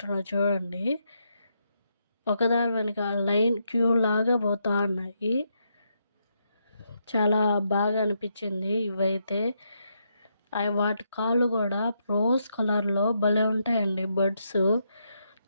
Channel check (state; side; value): inverted; both; correlation -0.80